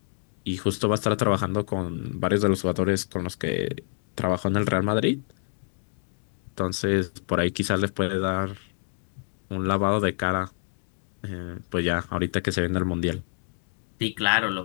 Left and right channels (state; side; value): silent; right; digital silence